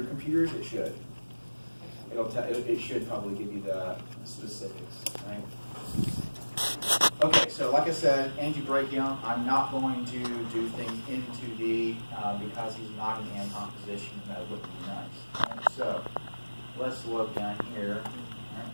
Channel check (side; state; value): both; inverted; correlation -1.00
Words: computers, it should. It should probably give you the specifics, right? Okay, so like I said, antebrachium, I'm not going to do things into the, because he's not in Anton position, that wouldn't be nice. Right? So let's look down here.